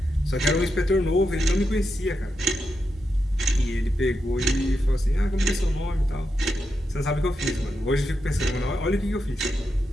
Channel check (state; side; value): normal; both; correlation 0.86